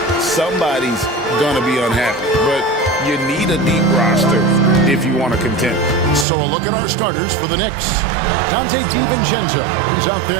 somebody's going to be unhappy. But you need a deep roster if you want to contend. So a look at our starters for the Knicks. Dante DiVincenzo. He's out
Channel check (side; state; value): left; drops out; at 6.2 s